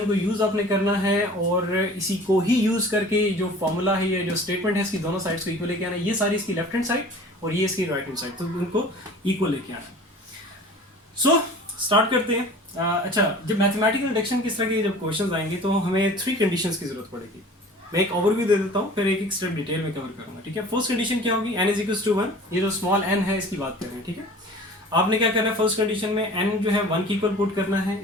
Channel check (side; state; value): both; normal; correlation 0.44